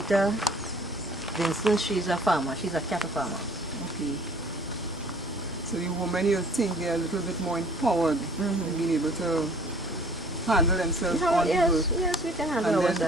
Vincent, she's a farmer, she's a cattle farmer. Okay. So the women, you think they're a little bit more empowered in being able to handle themselves on the work. Yes, we can handle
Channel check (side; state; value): both; normal; correlation 0.53